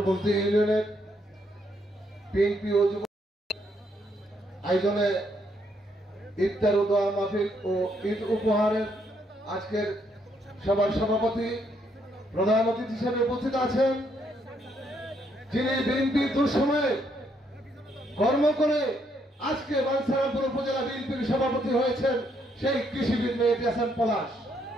ইউনিয়নের বিএনপি ও যুব আয়োজনে ইফতার ও দোয়া মাহফিল ও ঈদ উপহারের আজকের সভার সভাপতি প্রধান অতিথি হিসেবে উপস্থিত আছেন, যিনি বিএনপি দুঃসময়ে কর্ম করে আজকে বাঞ্ছারামপুর উপজেলা বিএনপির সভাপতি হয়েছেন, সেই কৃষিবিদ মেহেদী হাসান পলাশ।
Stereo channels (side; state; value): both; normal; correlation 0.73